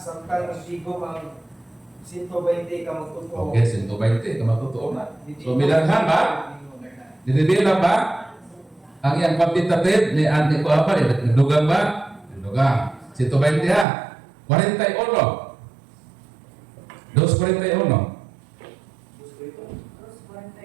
magsigom ang 120 ka magtuto. Okay, 120. Kamatotoo na. So, milanghan ba? Dinibila ba? Ang iyang quantitative ni Andy ko apa? Dugang ba? Dugang. 120 ha. 41. 241.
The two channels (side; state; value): left; drops out; at 13.9 s